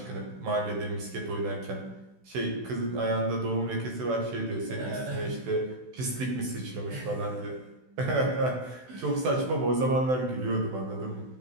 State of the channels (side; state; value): left; late; 16 ms